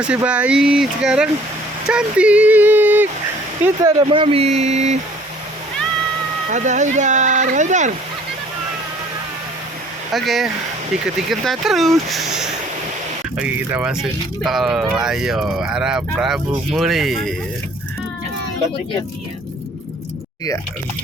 bayi, sekarang cantik. Kita ada Mami, ada Haidar. Oke, ikut-ikutan terus. Oke, kita masuk tol. Ayo, arah Prabu Muli. Iya.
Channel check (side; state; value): both; normal; correlation 0.56